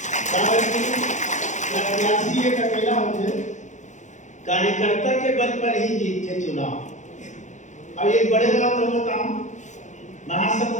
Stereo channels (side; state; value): right; late; 0.35 ms